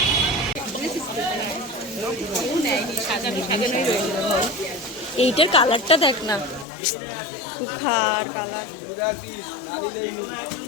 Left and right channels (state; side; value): drops out; right; at 6.7 s